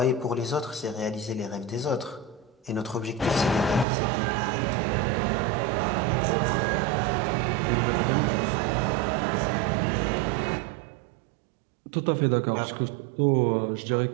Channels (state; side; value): drops out; left; at 3.9 s